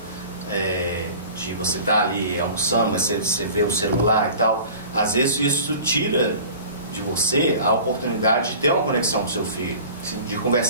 de você estar ali almoçando, mas você vê o celular e tal, às vezes isso tira de você a oportunidade de ter uma conexão com o seu filho. Sim. De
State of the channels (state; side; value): inverted; both; correlation -0.41